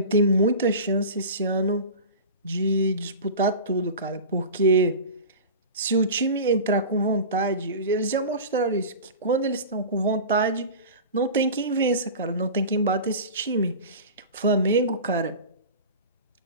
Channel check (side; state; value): both; inverted; correlation -0.32